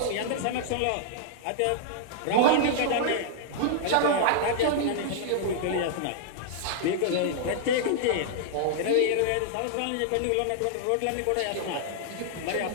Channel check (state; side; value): different; both; correlation -0.01